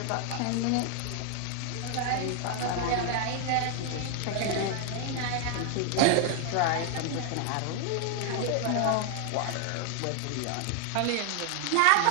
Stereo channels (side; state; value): both; different; correlation 0.00